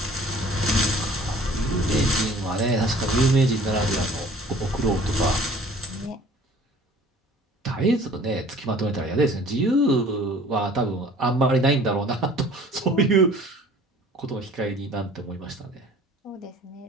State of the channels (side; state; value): both; normal; correlation 0.50